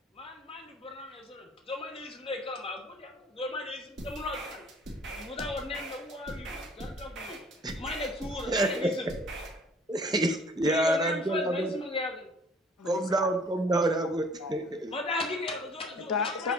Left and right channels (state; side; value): normal; both; correlation 0.54